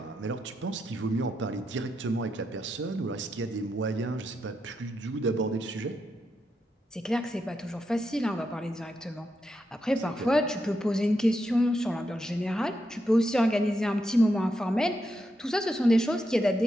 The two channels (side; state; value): both; normal; correlation 0.84